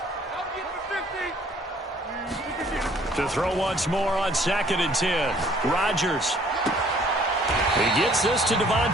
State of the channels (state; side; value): normal; both; correlation 0.58